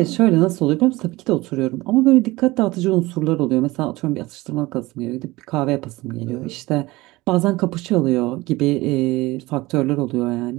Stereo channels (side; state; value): left; quieter; 20.3 dB